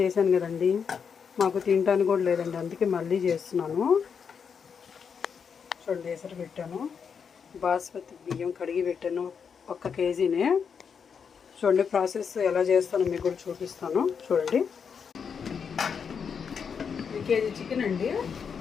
చేశాను కదండి, మాకు తినడానికి కూడా లేదండి, అందుకే మళ్ళీ చేస్తున్నాను. చూడండి, ఎసరు పెట్టాను, బాస్మతి బియ్యం కడిగి పెట్టాను, 1 కేజీనే. చూడండి ప్రాసెస్ ఎలా చేస్తానో మీకు కూడా చూపిస్తాను. చూడండి, 1 కేజీ చికెన్ అండి.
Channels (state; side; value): quieter; right; 6.5 dB